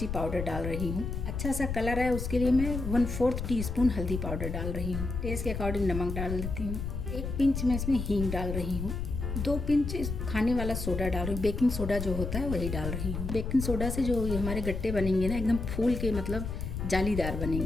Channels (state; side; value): noise; left; rumble, 4 dB below the sound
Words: पाउडर डाल रही हूँ। अच्छा सा कलर है उसके लिए मैं 1/4 टीस्पून हल्दी पाउडर डाल रही हूँ। टेस्ट के अकॉर्डिंग नमक डाल देती हूँ। 1 पिंच में इसमें हींग डाल रही हूँ। 2 पिंच खाने वाला सोडा डाल रही हूँ। बेकिंग सोडा जो होता है वही डाल रही हूँ। बेकिंग सोडा से जो हमारे गट्टे बनेंगे ना, एकदम फूल के मतलब जालीदार